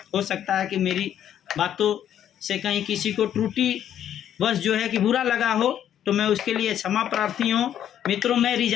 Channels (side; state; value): right; quieter; 10.3 dB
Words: हो सकता है कि मेरी बातों से कहीं किसी को त्रुटि बस जो है कि बुरा लगा हो, तो मैं उसके लिए क्षमा प्रार्थी हूँ। मित्रों, मैं